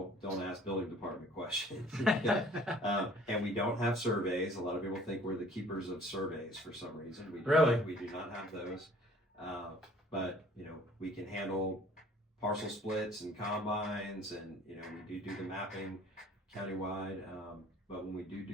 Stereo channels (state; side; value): normal; both; correlation 0.53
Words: ask building department questions. And we don't have surveys. A lot of people think we're the keepers of surveys for some reason. We do not have those. But we can handle parcel splits and combines, and we do the mapping countywide. But when we